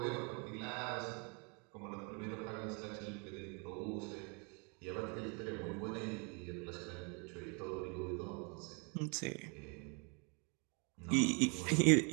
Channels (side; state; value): left; quieter; 34.1 dB